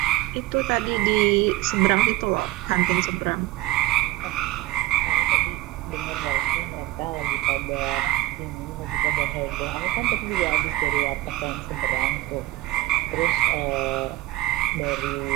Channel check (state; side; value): quieter; left; 16.9 dB